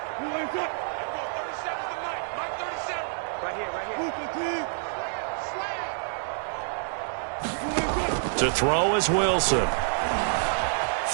To throw is Wilson.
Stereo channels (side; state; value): left; silent; digital silence